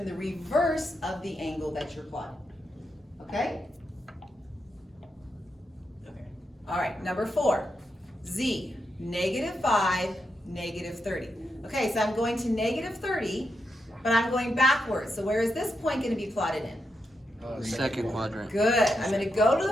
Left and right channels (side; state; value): both; normal; correlation 0.85